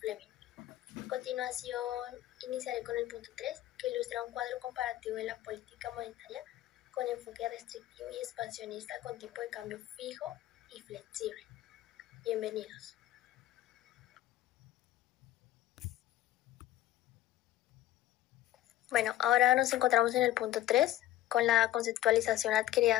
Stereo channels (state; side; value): quieter; right; 14.0 dB